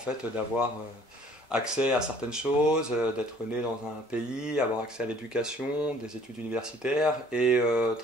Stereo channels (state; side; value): normal; both; correlation 0.56